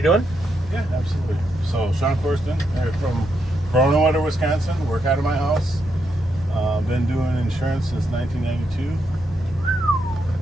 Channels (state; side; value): normal; both; correlation 0.81